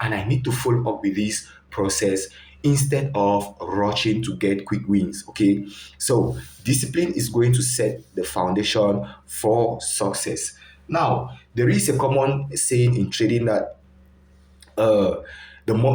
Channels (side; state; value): both; identical; correlation 1.00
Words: I need to follow up with this process instead of rushing to get quick wins. Okay, so discipline is going to set the foundation for success. Now, there is a common saying in trading that uh, the